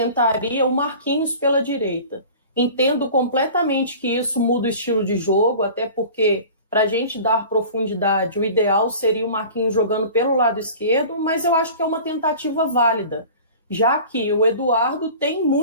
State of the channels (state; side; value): inverted; both; correlation -0.41